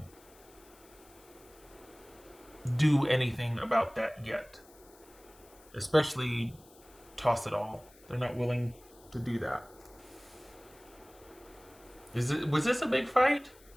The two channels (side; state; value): left; noise; hiss, 25 dB below the sound